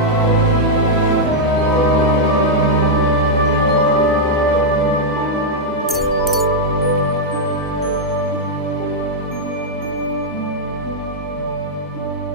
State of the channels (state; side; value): normal; both; correlation -0.04